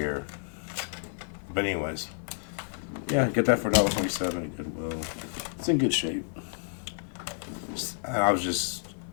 But anyways, yeah, get that for $1.27 at Goodwill. It's in good shape.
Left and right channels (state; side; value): silent; right; digital silence